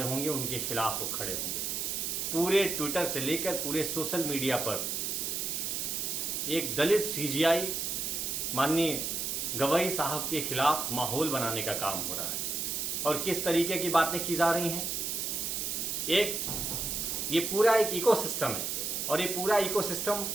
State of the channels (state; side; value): noise; right; hiss, 1 dB below the sound